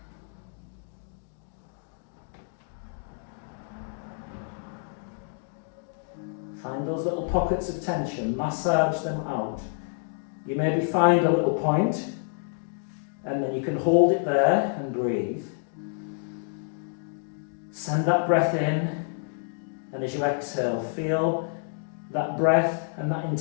Find those little pockets of tension, massage them out. You maybe find a little point, and then you can hold it there and breathe. Send that breath in, and as you exhale, feel that breath and that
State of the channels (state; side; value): silent; right; 59 dB below the other